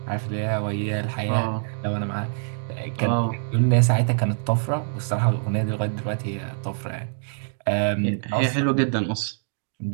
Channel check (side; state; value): left; silent; digital silence